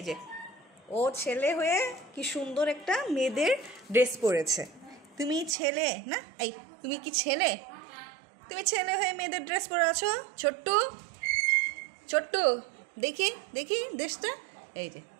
যে ও ছেলে হয়ে কি সুন্দর একটা মেয়েদের ড্রেস পরেছে। তুমি ছেলে না? এই তুমি কি ছেলে? তুমি ছেলে হয়ে মেয়েদের ড্রেস পরে আছো। ছোট্টু ছোট্টু দেখি দেখি ড্রেসটা। এই যে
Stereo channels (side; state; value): left; drops out; at 5.6 s